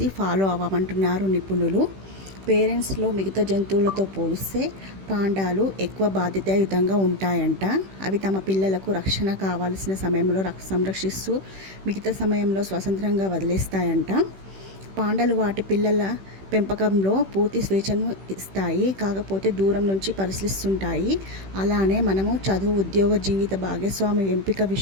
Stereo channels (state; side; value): late; left; 16 ms